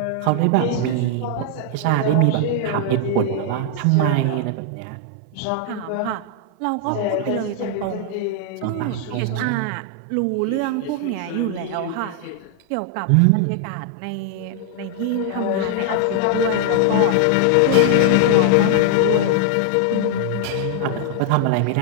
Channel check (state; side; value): different; both; correlation 0.00